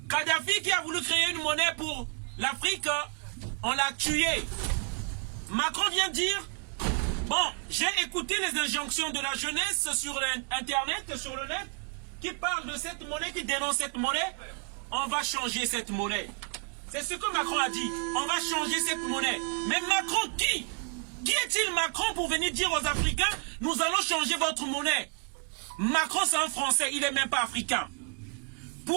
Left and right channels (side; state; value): left; quieter; 39.5 dB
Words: Kadhafi, qui a voulu créer une monnaie pour l'Afrique, on l'a tué. Macron vient dire, bon, j'ai écouté les injonctions de la jeunesse sur Internet, sur le net, qui parle de cette monnaie, qui dénonce cette monnaie, on va changer cette monnaie. C'est ce que Macron a dit, on va changer cette monnaie. Mais Macron qui? Qui est-il Macron pour venir dire aux Africains, nous allons changer votre monnaie? Macron c'est un Français, il n'est même pas africain.